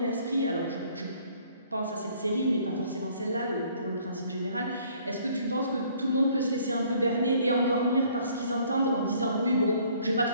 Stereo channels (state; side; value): inverted; both; correlation -0.60